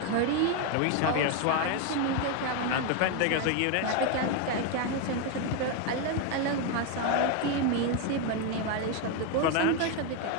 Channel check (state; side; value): different; both; correlation 0.01